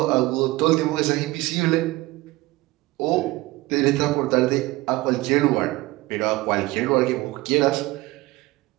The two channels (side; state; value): left; quieter; 19.7 dB